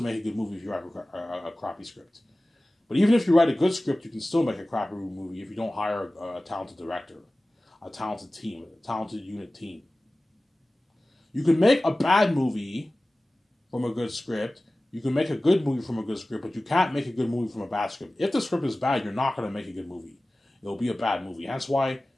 make a good movie if you write a crappy script. But even if you write a good script, you can still make a crappy movie if you don't hire a talented director, a talented team, a talented unit team. You can make a bad movie from a good script. You can make a good movie from a good script, but you can't make a good movie from a bad script. If the script is bad, you're not going to make a good movie. It'll be a bad movie. That's why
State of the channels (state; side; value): normal; both; correlation 0.97